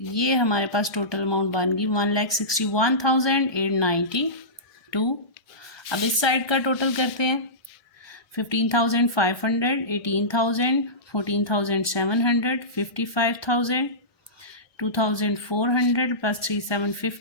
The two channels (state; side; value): late; right; 2.4 ms